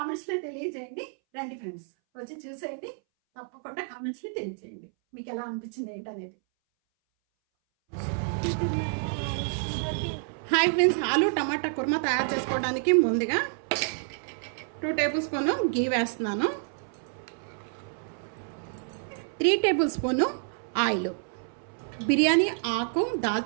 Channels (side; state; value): left; silent; 59 dB below the other